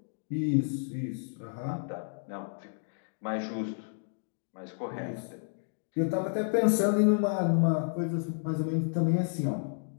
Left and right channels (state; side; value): silent; right; digital silence